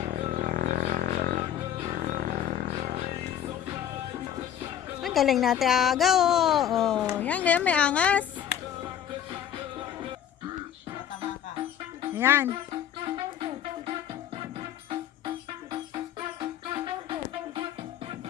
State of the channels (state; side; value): quieter; right; 9.8 dB